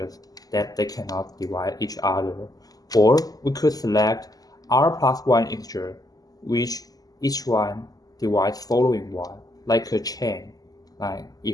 that they cannot divide each other, or we could select r plus 1 integer, which each one divides following one, like a chain. Like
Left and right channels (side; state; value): right; late; 0.18 ms